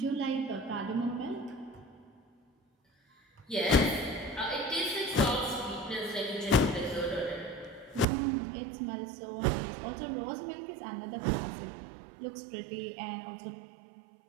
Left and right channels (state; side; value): drops out; left; at 8.1 s